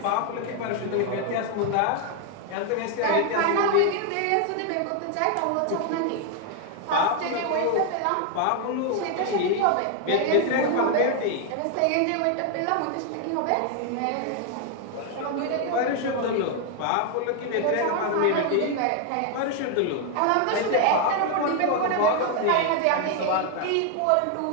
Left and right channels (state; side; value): different; both; correlation 0.01